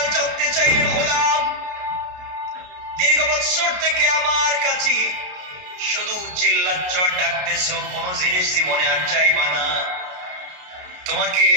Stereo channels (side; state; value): left; late; 33 ms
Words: জানতে চাইলেন, গোলাম দীর্ঘ বছর থেকে আমার কাছে শুধু চিল্লাচ্ছ, ডাকতেছো, কোন জিনিস জীবনে আর চাইবা না, তোমাকে